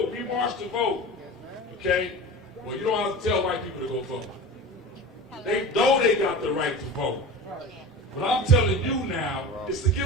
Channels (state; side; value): normal; both; correlation 0.33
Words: We marched to vote. Okay? Well, you don't have to tell white people to go vote. They know they got the right to vote. What I'm telling you now is to